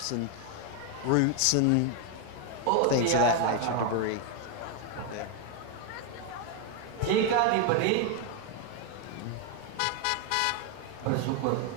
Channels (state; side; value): different; both; correlation 0.01